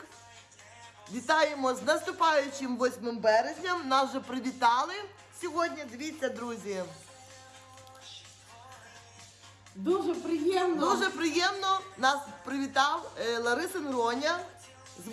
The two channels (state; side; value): identical; both; correlation 1.00